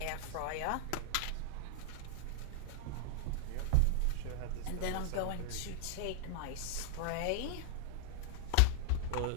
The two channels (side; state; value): both; different; correlation 0.00